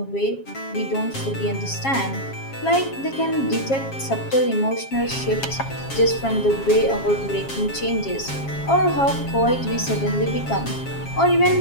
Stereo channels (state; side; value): late; right; 7.4 ms